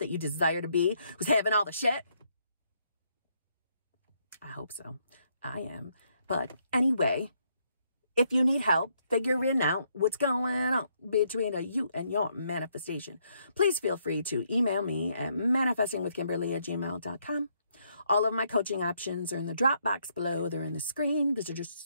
you desire to be, who's having all the shit? I hope so. I am. But anyway, if you need help figuring out what's going on between you and your manifestation, please feel free to email me at manifestingwithkimberly@gmail.com. All of my coaching options are in the drop box below. They're in the screen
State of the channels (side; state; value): both; inverted; correlation -0.73